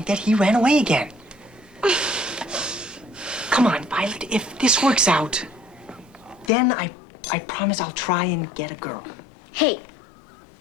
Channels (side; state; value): right; drops out; at 6.5 s